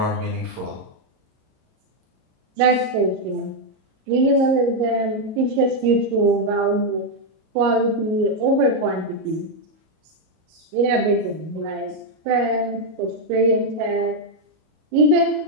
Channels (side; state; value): left; late; 38 ms